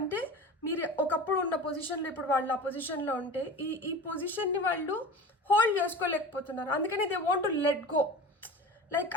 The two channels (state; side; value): normal; both; correlation 0.34